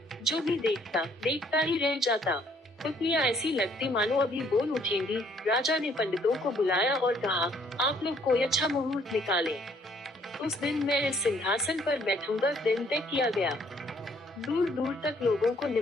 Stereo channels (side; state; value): both; normal; correlation 0.64